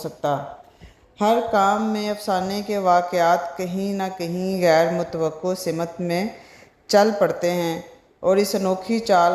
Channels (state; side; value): identical; both; correlation 1.00